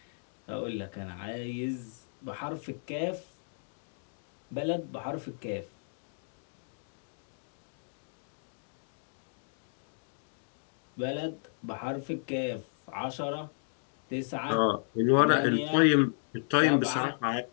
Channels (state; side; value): silent; right; digital silence